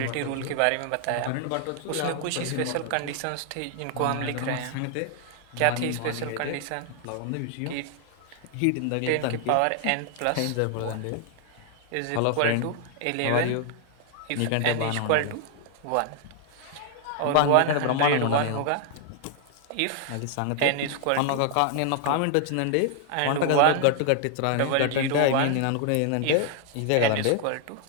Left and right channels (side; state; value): both; different; correlation 0.00